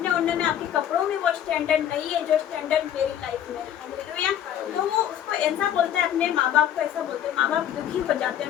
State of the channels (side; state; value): right; quieter; 10.4 dB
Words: ओढ़ने में, आपके कपड़ों में वो स्टैंडर्ड नहीं है जो स्टैंडर्ड मेरी लाइफ में है। तो वो उसको ऐसा बोलता है, अपने माँ बाप को ऐसा बोलते हैं। माँ बाप दुखी हो जाते हैं,